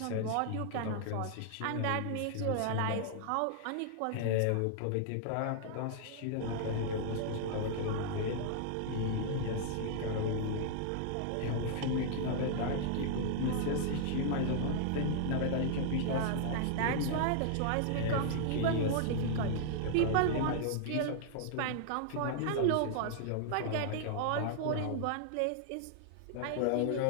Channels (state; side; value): different; both; correlation -0.01